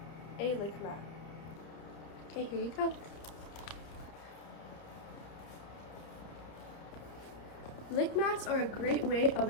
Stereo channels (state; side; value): late; right; 31 ms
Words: a lick mat. Okay, here you go. Lick mats are a great way of